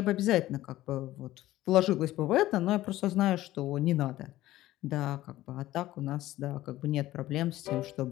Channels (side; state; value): right; quieter; 15.5 dB